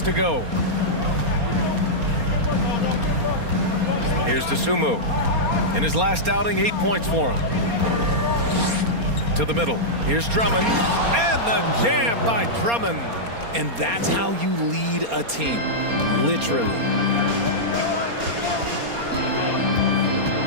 to go. Here's DeSumo. In his last outing, 8 points for him. To the middle. Here's Drummond. And the jam by Drummond. And that's how you lead a team. Literally.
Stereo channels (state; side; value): late; left; 4.3 ms